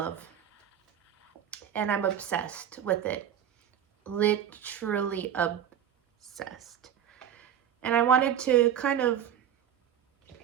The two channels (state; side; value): quieter; left; 9.6 dB